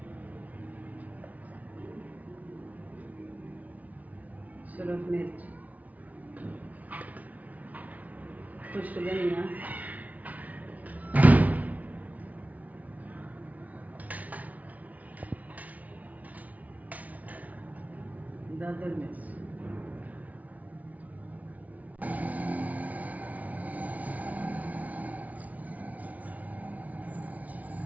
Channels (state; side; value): late; left; 0.072 ms